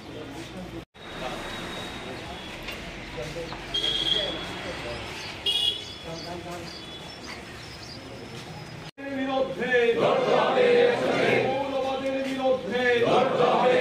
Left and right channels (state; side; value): identical; both; correlation 1.00